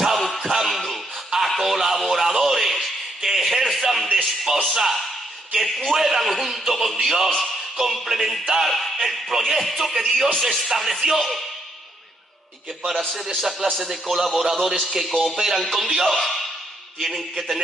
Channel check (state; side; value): normal; both; correlation 0.74